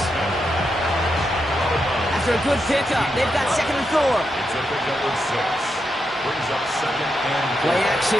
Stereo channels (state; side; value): normal; both; correlation 0.84